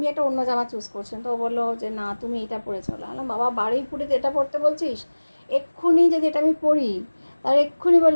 একটা অন্য জামা চুজ করছিলাম, তো ও বললো যে না তুমি এটা পরে চলো। বললাম বাবা, বারুইপুরে এটা পরতে বলছিস? এক্ষুনি যদি এটা আমি পরি, তার এক্ষুনি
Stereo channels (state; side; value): inverted; both; correlation -1.00